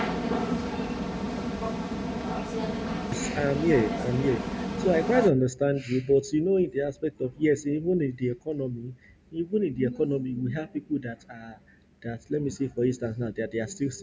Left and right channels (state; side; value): identical; both; correlation 1.00